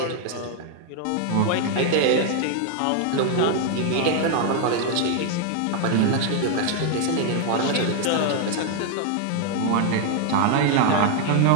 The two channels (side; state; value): both; different; correlation 0.00